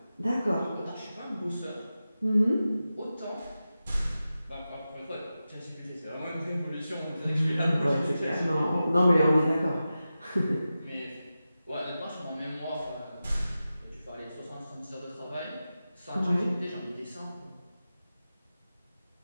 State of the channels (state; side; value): inverted; both; correlation -0.93